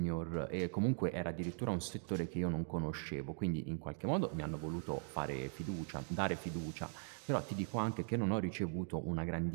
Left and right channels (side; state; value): left; silent; 51 dB below the other